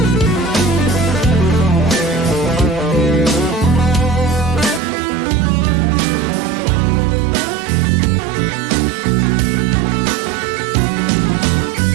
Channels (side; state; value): left; drops out; at 4.8 s